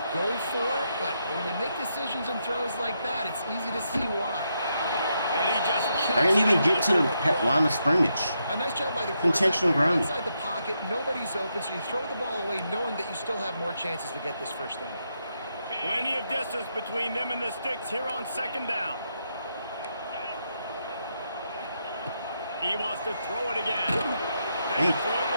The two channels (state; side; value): inverted; both; correlation -0.81